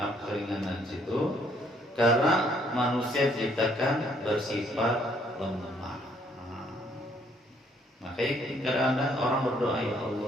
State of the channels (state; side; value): normal; both; correlation 0.66